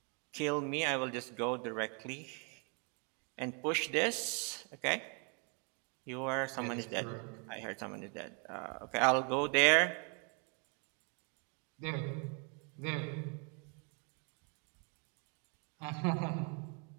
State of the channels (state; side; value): quieter; left; 37.1 dB